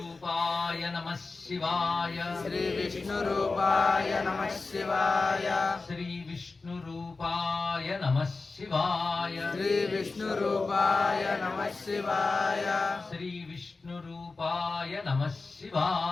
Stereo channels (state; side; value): quieter; right; 3.8 dB